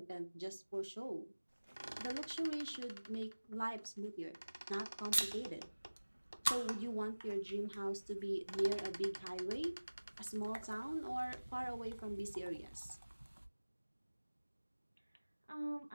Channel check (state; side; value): inverted; both; correlation -1.00